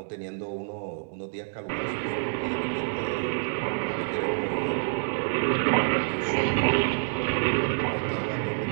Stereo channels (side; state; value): left; silent; 60 dB below the other